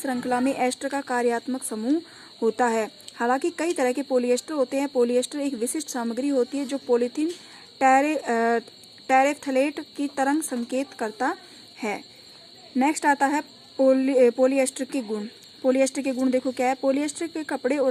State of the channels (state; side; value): identical; both; correlation 1.00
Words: में एस्टर का कार्यात्मक समूह होता है। हालांकि कई तरह के पॉलिएस्टर होते हैं। पॉलिएस्टर एक विशिष्ट सामग्री होती है जो पॉलीथीन टेरेफ्थलेट की तरंग संकेत करता है। नेक्स्ट आता है पॉलिएस्टर के गुण। पॉलिएस्टर के गुण देखो क्या है। पॉलिएस्टर के कपड़े